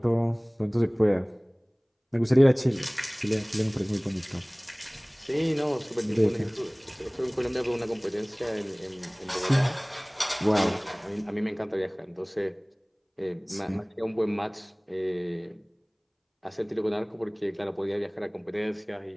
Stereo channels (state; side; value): identical; both; correlation 1.00